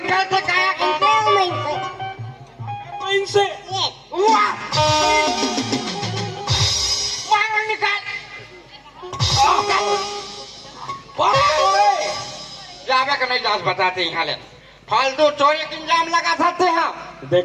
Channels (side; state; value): both; identical; correlation 1.00